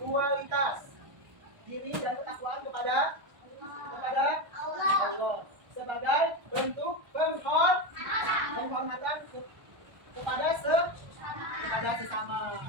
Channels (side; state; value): left; late; 1.3 ms